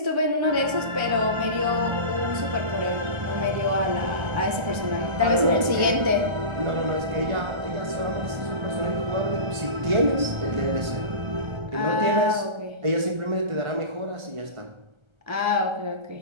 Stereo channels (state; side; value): late; left; 1.3 ms